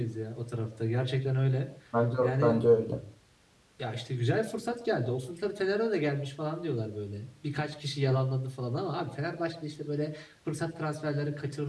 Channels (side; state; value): both; identical; correlation 1.00